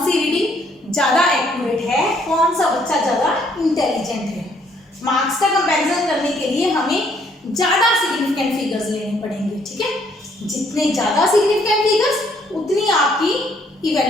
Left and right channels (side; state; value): both; normal; correlation 0.67